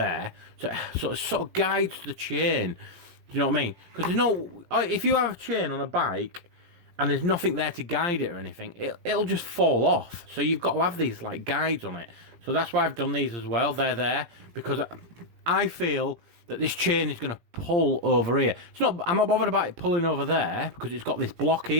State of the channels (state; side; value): late; left; 17 ms